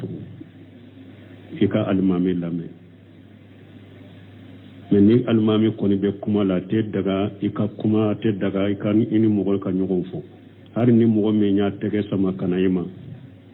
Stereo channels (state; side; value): identical; both; correlation 1.00